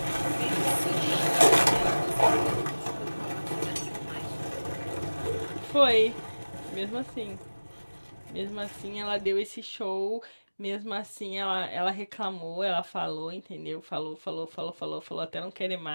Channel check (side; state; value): both; inverted; correlation -1.00